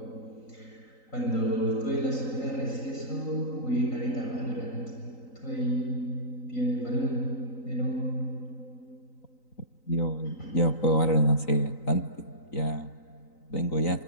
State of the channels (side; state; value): right; late; 3.9 ms